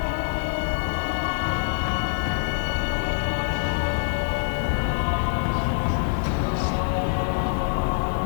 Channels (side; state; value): right; silent; digital silence